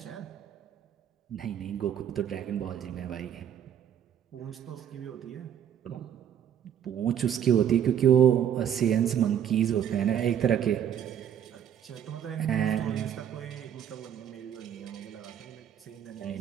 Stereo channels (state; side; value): quieter; left; 9.6 dB